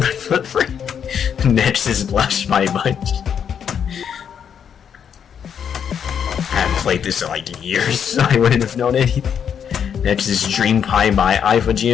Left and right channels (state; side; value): quieter; right; 7.9 dB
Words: footprint. Next is Blush by Bunch. I haven't played this in like years, so I wouldn't have known anything. Next is Dream Pie by IVE